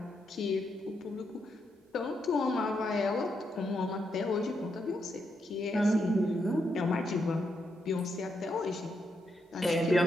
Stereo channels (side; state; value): both; normal; correlation 0.81